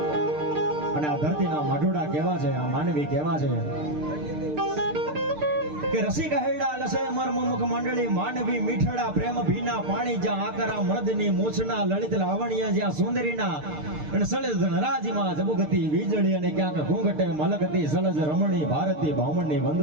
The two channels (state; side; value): late; left; 6.6 ms